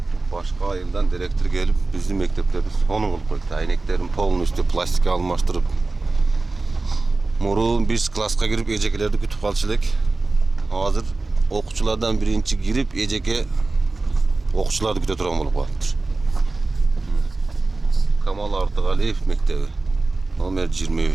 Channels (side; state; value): left; quieter; 3.4 dB